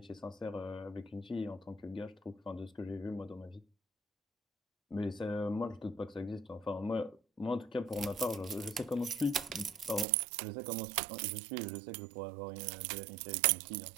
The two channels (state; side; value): drops out; left; at 10.1 s